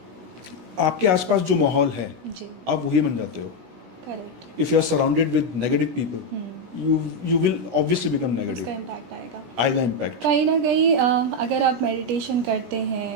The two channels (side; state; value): left; late; 17 ms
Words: आपके आसपास जो माहौल है जी, आप वही बन जाते हो। Correct. If you are surrounded with negative people, you will obviously become negative। उसका इम्पैक्ट आएगा, आएगा इम्पैक्ट। कहीं ना कहीं। अगर आप मेडिटेशन करते